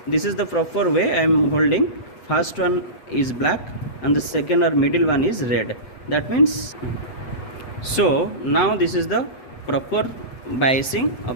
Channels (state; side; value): late; right; 7.8 ms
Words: this is the proper way. I am holding first one is black and the second or middle one is red. That means, so now this is the proper biasing